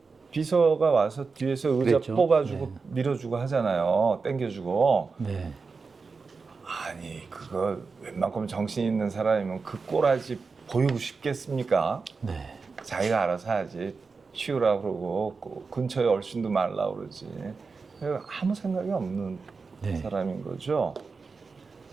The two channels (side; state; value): left; quieter; 4.6 dB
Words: 비서가 와서 뒤에서 의자 그랬죠. 뽑아주고 밀어주고 하잖아요. 땡겨주고. 네. 아니 그거 웬만큼 정신 있는 사람이면 그 꼬라지 보이고 싶겠습니까? 네. 자기가 알아서 하지. 치우라 그러고 근처에 얼씬도 말라 그러지. 아무 생각이 없는 사람인 거죠.